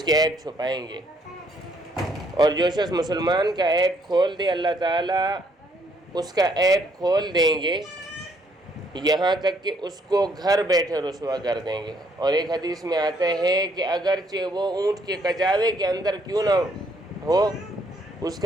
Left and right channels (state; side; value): normal; both; correlation 0.68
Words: کے عیب چھپائیں گے، اور جو شخص مسلمان کا عیب کھول دے، اللہ تعالیٰ اس کا عیب کھول دیں گے، یہاں تک کہ اس کو گھر بیٹھے رسوا کر دیں گے۔ اور ایک حدیث میں آتا ہے کہ اگرچہ وہ اونٹ کے کچاوے کے اندر کیوں نہ ہو، اس